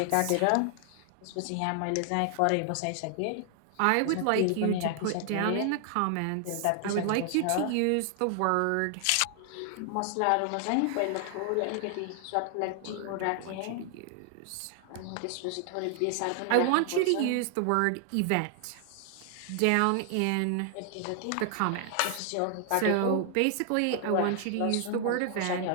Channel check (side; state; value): both; different; correlation 0.00